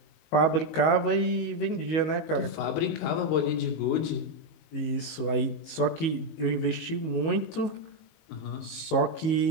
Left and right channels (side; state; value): right; late; 19 ms